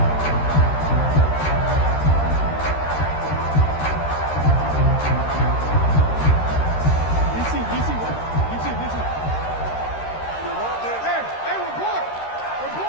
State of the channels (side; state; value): right; late; 13 ms